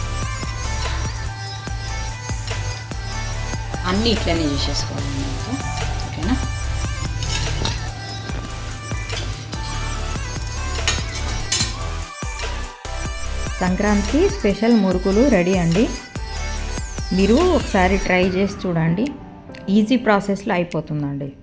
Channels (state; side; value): identical; both; correlation 1.00